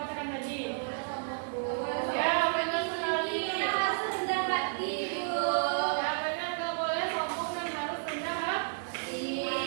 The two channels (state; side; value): silent; left; digital silence